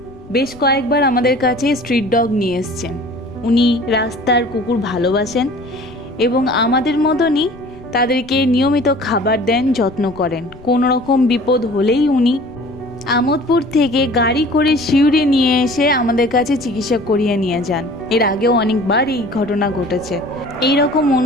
বেশ কয়েকবার আমাদের কাছে স্ট্রিট ডগ নিয়ে এসছেন। উনি রাস্তার কুকুর ভালোবাসেন এবং আমাদের মতনই তাদেরকে নিয়মিত খাবার দেন, যত্ন করেন। কোনো রকম বিপদ হলেই উনি আমোদপুর থেকে গাড়ি করে শিউরে নিয়ে এসে আমাদের কাছে চিকিৎসা করিয়ে নিয়ে যান। এর আগেও অনেকবার এই ঘটনা ঘটেছে। এই রকম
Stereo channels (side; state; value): left; noise; rumble, 22 dB below the sound